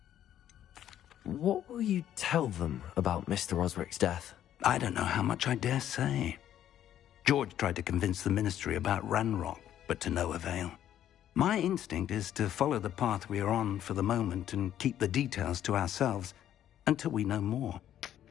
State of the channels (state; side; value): quieter; right; 11.2 dB